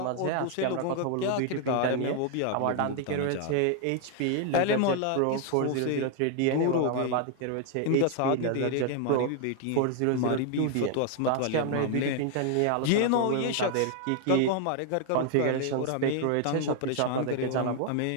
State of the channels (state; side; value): different; both; correlation 0.00